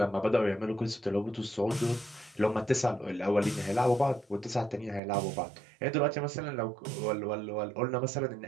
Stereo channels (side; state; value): left; drops out; at 5.0 s